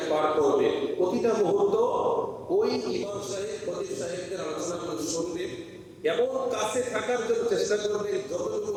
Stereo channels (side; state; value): both; identical; correlation 1.00